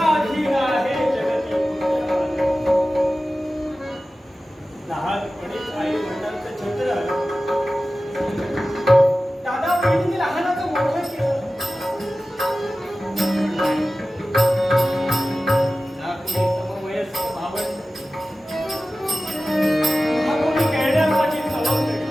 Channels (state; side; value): normal; both; correlation 0.95